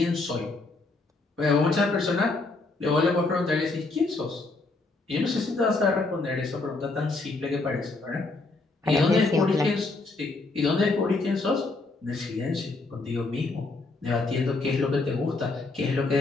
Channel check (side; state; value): right; quieter; 3.4 dB